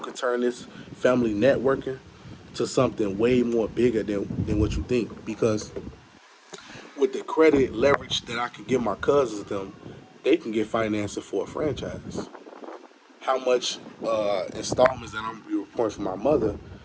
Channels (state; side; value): identical; both; correlation 1.00